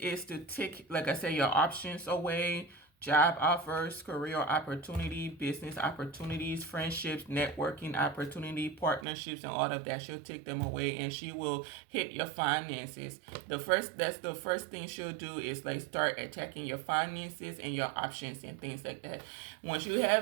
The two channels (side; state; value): left; drops out; at 9.1 s